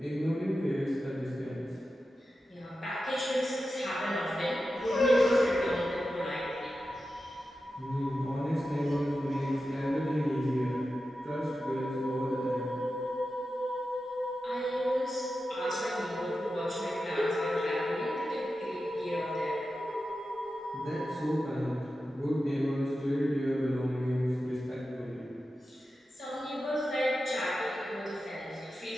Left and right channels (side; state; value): both; normal; correlation 0.92